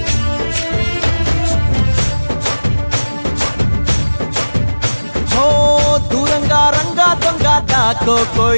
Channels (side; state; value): both; inverted; correlation -1.00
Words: దూరంగా రంగా దొంగ దాకో